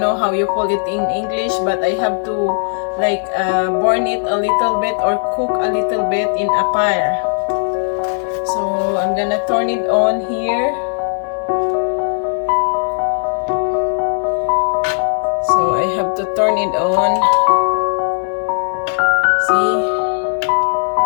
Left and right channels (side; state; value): right; silent; digital silence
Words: how you call it in English, but I have to like burn it a little bit or cook a little bit in a fire. So I'm gonna turn it on here. So I have to turn it on. See?